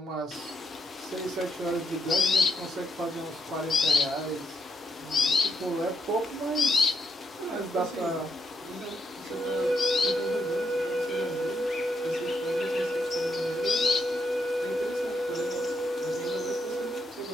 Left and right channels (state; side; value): normal; both; correlation 0.77